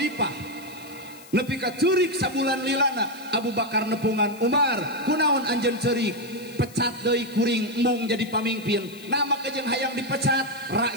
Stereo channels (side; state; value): left; noise; hiss, 21 dB below the sound